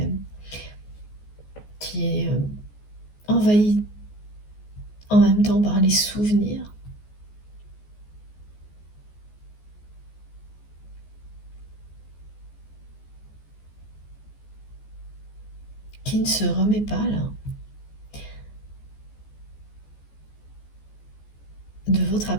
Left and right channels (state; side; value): late; right; 14 ms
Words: envahie en même temps par les souvenirs. Qui ne se remet pas là de votre